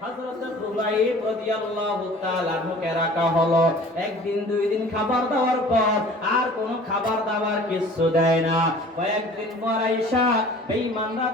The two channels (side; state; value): both; normal; correlation 0.47